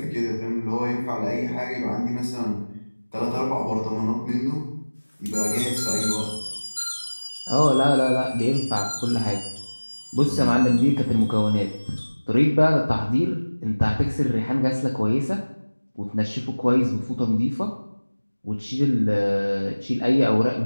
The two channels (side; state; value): both; inverted; correlation -1.00